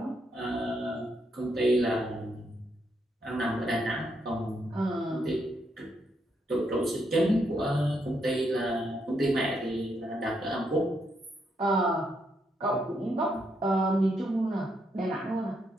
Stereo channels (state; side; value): normal; both; correlation 0.78